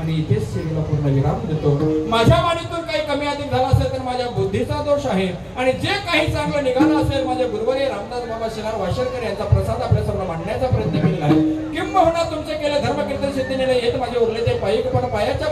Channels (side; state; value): both; identical; correlation 1.00